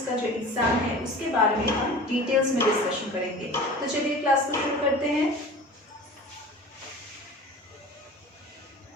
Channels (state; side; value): normal; both; correlation 0.39